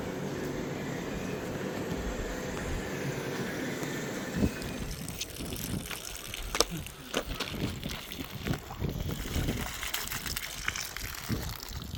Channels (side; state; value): both; identical; correlation 1.00